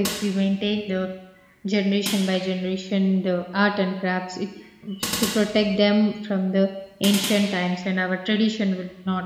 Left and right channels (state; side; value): identical; both; correlation 1.00